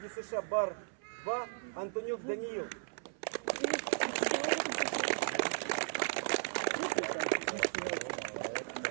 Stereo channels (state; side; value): silent; left; 54 dB below the other